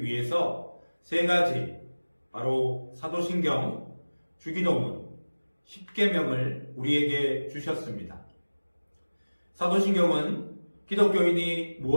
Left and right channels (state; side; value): inverted; both; correlation -1.00